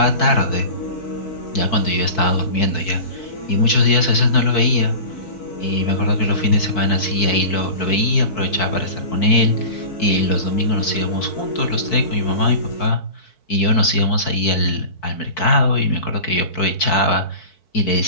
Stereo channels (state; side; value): late; right; 4.6 ms